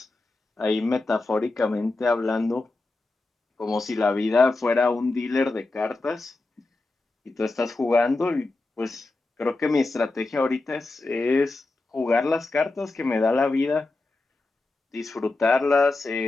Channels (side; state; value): right; quieter; 3.2 dB